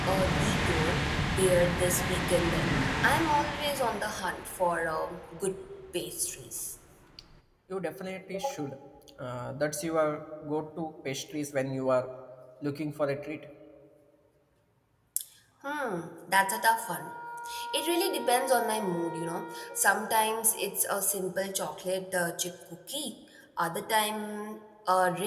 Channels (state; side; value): identical; both; correlation 1.00